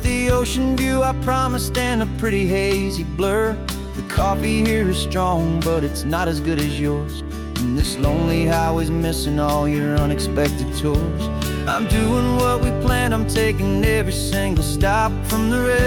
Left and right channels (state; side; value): identical; both; correlation 1.00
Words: the ocean view I promised and a pretty hazy blur. The coffee here is strong, but it's not as good as yours. And this lonely highway's missing all your unexpected tours. I'm doing what we planned, I'm taking every single stop, from the